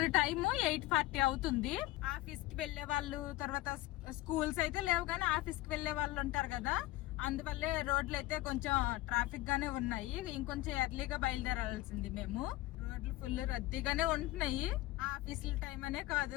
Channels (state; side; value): quieter; right; 17.6 dB